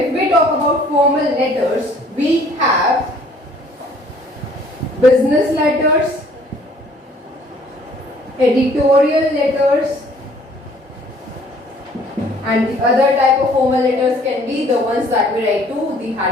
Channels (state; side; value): normal; both; correlation 0.57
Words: we talk about formal letters, we have business letters, editorial letters, and the other type of formal letters can be the ones that we write to the